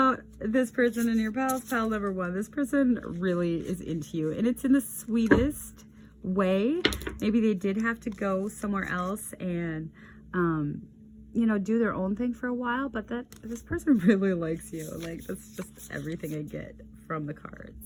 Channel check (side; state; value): both; identical; correlation 1.00